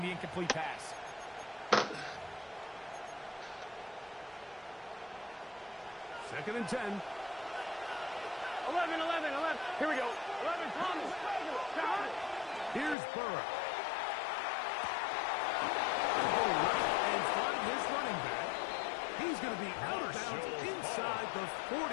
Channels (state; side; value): drops out; right; at 13.0 s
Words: incomplete pass. Second and 10. 11. Here we go. 11, Thomas. Here's Burrow. And find his running back. He's going to be out of bounds inside the